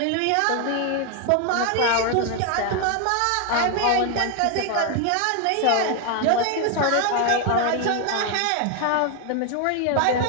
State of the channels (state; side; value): different; both; correlation 0.01